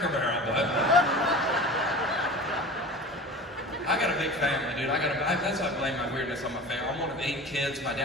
Barrel, but I got a big family, dude. That's why I blame my weirdness on my family. I'm one of 8 kids. My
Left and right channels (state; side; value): normal; both; correlation 0.36